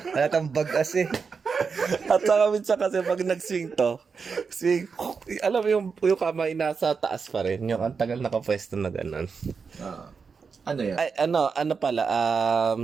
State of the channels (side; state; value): left; quieter; 5.4 dB